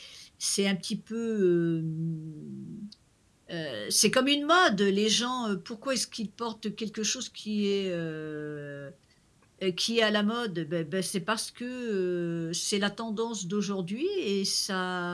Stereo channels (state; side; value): identical; both; correlation 1.00